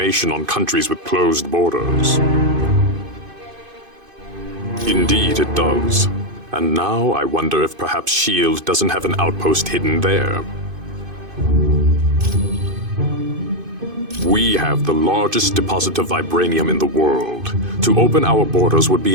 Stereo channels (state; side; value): late; left; 2.5 ms